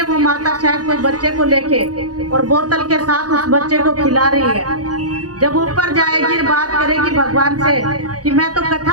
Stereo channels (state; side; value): late; left; 0.68 ms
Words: वो माता शायद कोई बच्चे को लेके और बोतल के साथ उस बच्चे को खिला रही है। जब ऊपर जाएगी बात करेगी भगवान से कि मैं तो